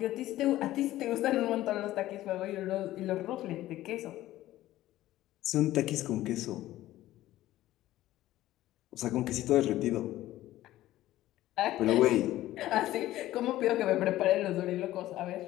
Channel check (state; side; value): quieter; right; 15.0 dB